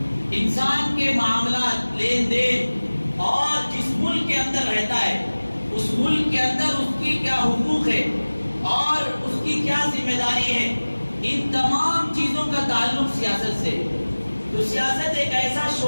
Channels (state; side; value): inverted; both; correlation -1.00